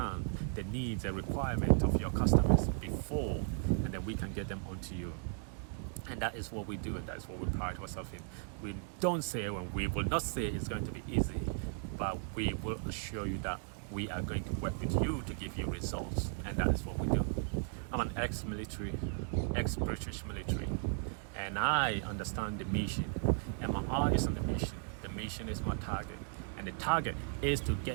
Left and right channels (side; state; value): left; silent; 54 dB below the other